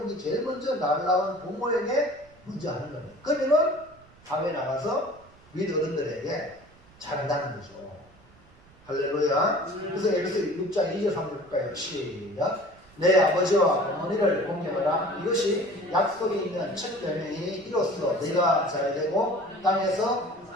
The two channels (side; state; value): right; noise; rumble, 27 dB below the sound